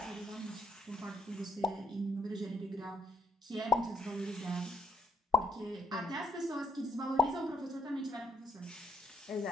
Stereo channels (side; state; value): both; normal; correlation 0.73